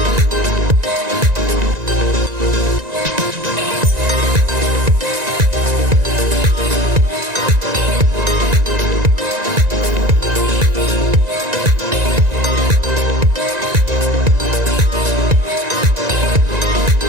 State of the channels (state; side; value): late; left; 1.9 ms